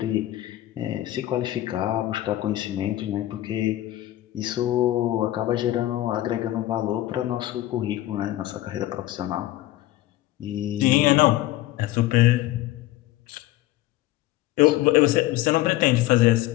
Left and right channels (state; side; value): quieter; right; 15.6 dB